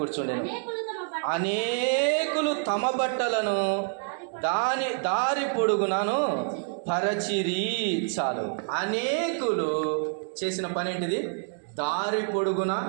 అనేకులు తమ బట్టలను దారి పొడుగునను పరచిరి. చాలు. అనేకులు చేసిన పని ఏంటిది? దారి పొడుగున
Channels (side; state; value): left; silent; 59 dB below the other